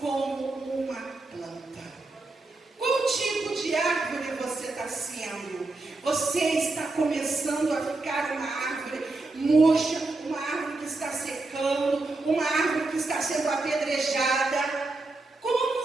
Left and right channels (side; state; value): left; quieter; 3.2 dB